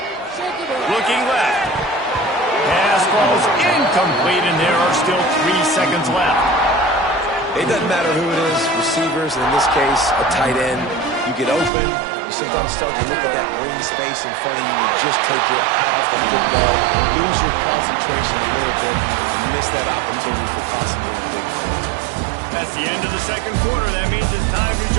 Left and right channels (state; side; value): drops out; left; at 11.7 s